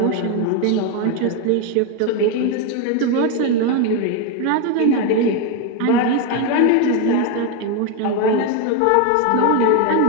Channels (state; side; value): different; both; correlation 0.02